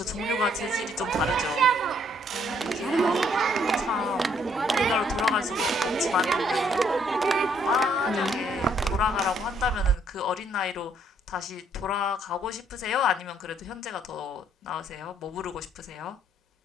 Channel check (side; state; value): both; normal; correlation 0.68